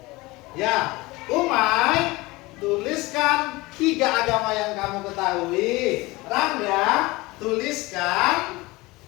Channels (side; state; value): right; quieter; 21.8 dB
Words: Ya, Umay, tuliskan 3 agama yang kamu ketahui. Rangga, tuliskan